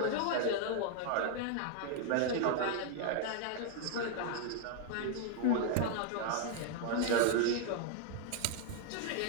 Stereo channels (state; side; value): different; both; correlation 0.00